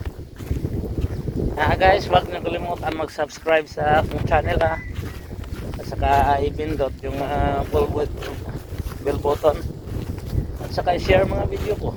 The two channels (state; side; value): identical; both; correlation 1.00